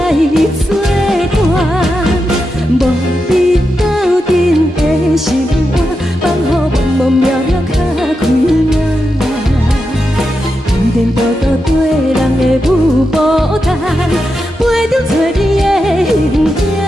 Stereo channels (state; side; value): normal; both; correlation 0.88